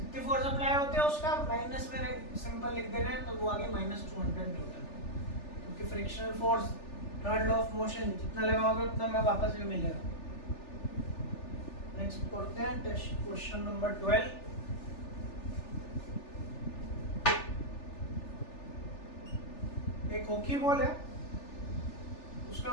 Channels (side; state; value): right; late; 3.4 ms